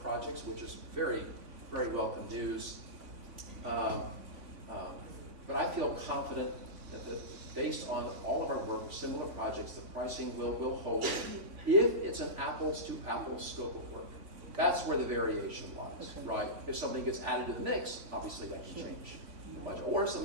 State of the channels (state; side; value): late; left; 3.5 ms